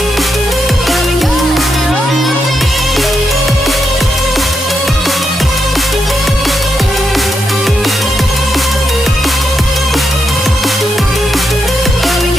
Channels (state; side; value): normal; both; correlation 0.83